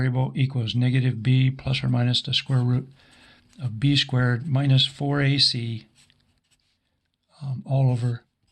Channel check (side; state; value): both; identical; correlation 1.00